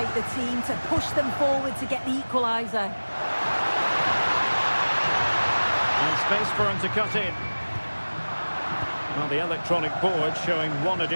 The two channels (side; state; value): both; inverted; correlation -1.00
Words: the team to push them forward to get the equaliser. And space for him to cut in. Well, the electronic board showing 1